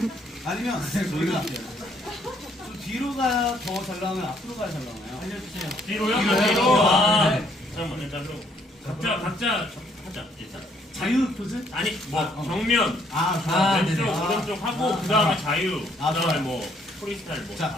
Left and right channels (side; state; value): both; normal; correlation 0.67